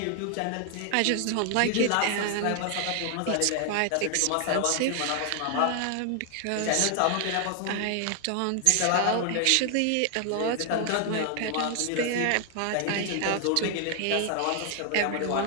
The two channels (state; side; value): different; both; correlation 0.00